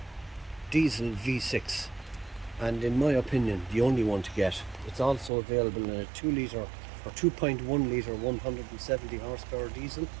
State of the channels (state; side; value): drops out; left; at 5.3 s